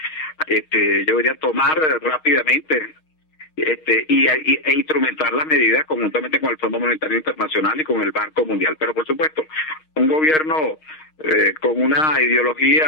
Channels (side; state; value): right; late; 6.4 ms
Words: tomar rápidamente, e instrumentar las medidas conjuntamente con el Fondo Monetario Internacional y con el Banco Mundial. Pero por supuesto, un gobierno con una